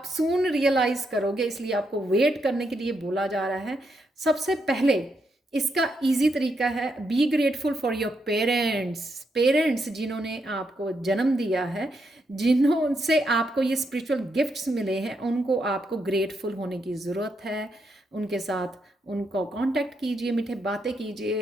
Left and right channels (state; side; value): normal; both; correlation 0.80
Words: सून रियलाइज़ करोगे, इसलिए आपको वेट करने के लिए बोला जा रहा है। सबसे पहले इसका इजी तरीका है, be grateful for your parents. Parents जिन्होंने आपको जन्म दिया है, जिन्हों से आपको ये स्पिरिचुअल गिफ्ट्स मिले हैं, उनको आपको ग्रेटफुल होने की ज़रूरत है। उनके साथ उनको कांटेक्ट कीजिए, मीठे बातें